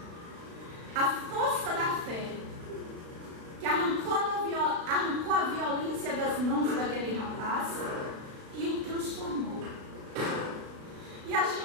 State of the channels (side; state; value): left; late; 36 ms